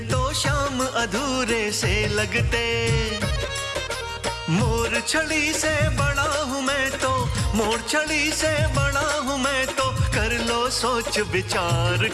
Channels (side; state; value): both; identical; correlation 1.00